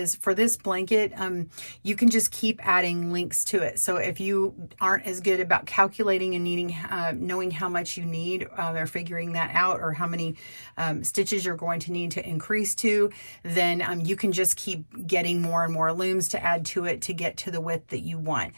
for this blanket, you can just keep adding links to it. So if you aren't as good about calculating and needing, knowing how much you need or figuring that out, or how many stitches you're going to need to increase to, then you can just keep getting more and more looms to add to it to get to the width that you want.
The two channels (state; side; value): inverted; both; correlation -1.00